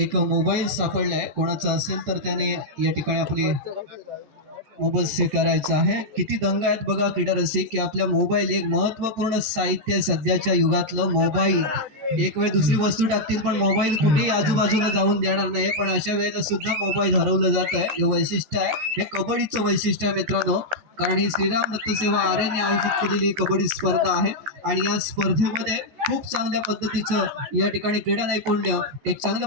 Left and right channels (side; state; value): left; late; 13 ms